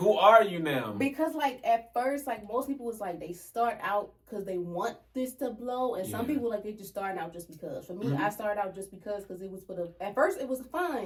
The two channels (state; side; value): identical; both; correlation 1.00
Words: are you now? Because, like, at first, like, most people was like, they start out because they want this to blow. And some people, like, they just starting out just because. For me, I started out just because it was at first, it was fun.